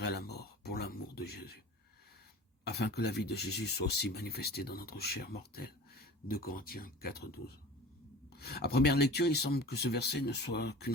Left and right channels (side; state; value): both; normal; correlation 0.39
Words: à la mort pour l'amour de Jésus, afin que la vie de Jésus soit aussi manifestée dans notre chair mortelle. 2 Corinthiens 4,12. À première lecture, il semble que ce verset ne soit qu'une